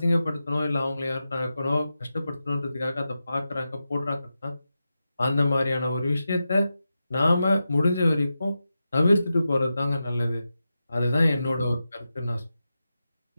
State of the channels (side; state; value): both; inverted; correlation -0.91